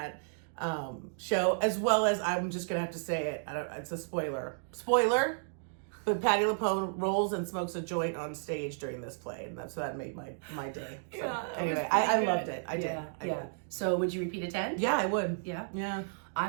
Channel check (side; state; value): left; silent; digital silence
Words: show, as well as, I'm just gonna have to say it, it's a spoiler, but Patti LuPone rolls and smokes a joint on stage during this play, and that made my day. So, anyway, I loved it. I did. So would you repeat attend? Yeah, I would. Yeah.